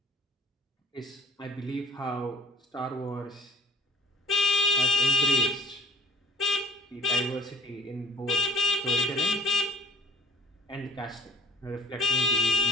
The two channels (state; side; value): normal; both; correlation 0.57